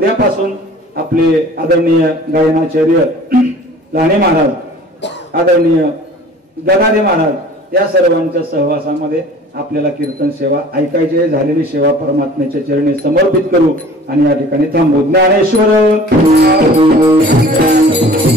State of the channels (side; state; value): both; normal; correlation 0.47